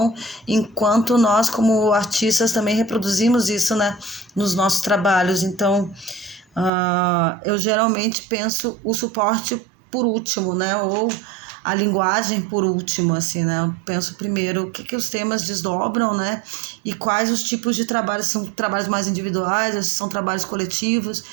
enquanto nós, como artistas, também reproduzimos isso, né, nos nossos trabalhos. Então, eu geralmente penso o suporte por último, né, ou a linguagem por último, assim, né? Eu penso primeiro o que os temas desdobram, né? E quais os tipos de trabalhos, são trabalhos mais individuais, ou são trabalhos coletivos,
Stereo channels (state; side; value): drops out; left; at 6.7 s